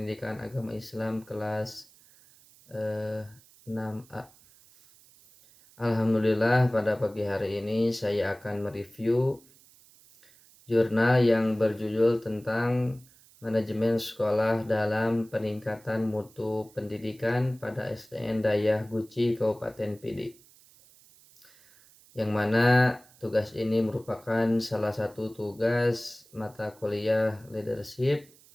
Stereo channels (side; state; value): right; noise; hiss, 27 dB below the sound